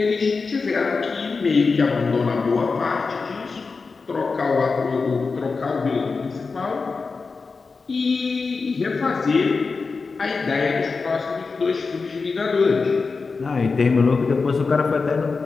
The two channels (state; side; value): quieter; right; 4.5 dB